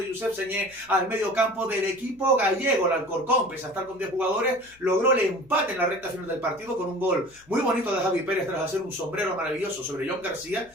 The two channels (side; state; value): left; noise; hum, 29 dB below the sound